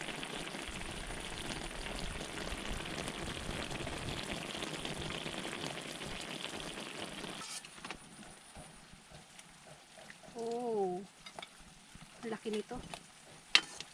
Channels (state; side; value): identical; both; correlation 1.00